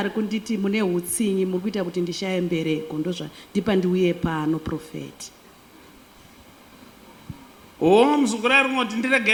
kunditi mune hutsinyi muri kuita kuti ndishaye mbereko, ndozvandipa ndiuye pano prophet. Muzukuru ari kungoti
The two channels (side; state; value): both; identical; correlation 1.00